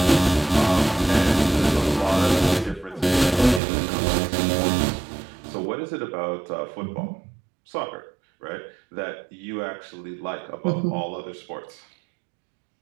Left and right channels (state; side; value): drops out; left; at 3.6 s